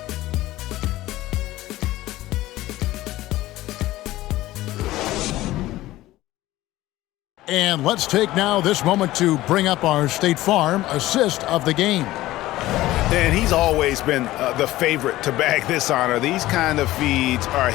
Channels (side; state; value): right; quieter; 16.5 dB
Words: And let's take now this moment to bring up our State Farm assist of the game. And he's always been the favorite to bag this honor. These kind of feeds are